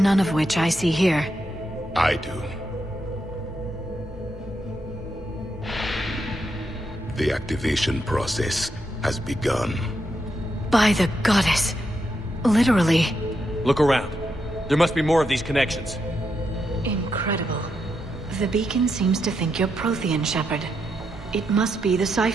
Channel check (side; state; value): both; normal; correlation 0.82